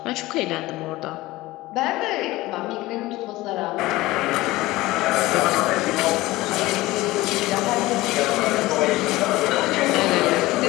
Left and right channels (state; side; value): quieter; right; 18.7 dB